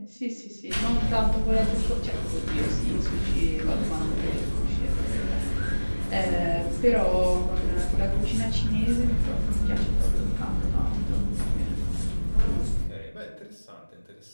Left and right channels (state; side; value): inverted; both; correlation -1.00